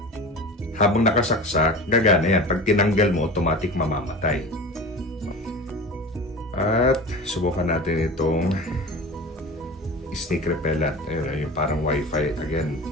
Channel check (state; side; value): normal; both; correlation 0.33